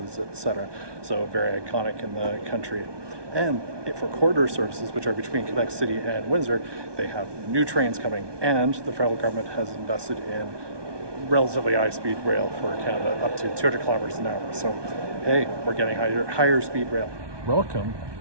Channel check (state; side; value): late; left; 1.2 ms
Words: etc. So very iconic in the country. And for corridor services, which are between Quebec City and Windsor, they have new trains coming, and the federal government has invested in relatively high-speed rail for Canada, up to 200 kilometers an hour. So, hey, we're getting higher speed rail. Welcome